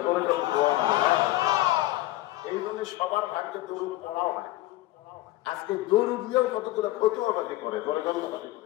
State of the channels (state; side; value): quieter; right; 17.3 dB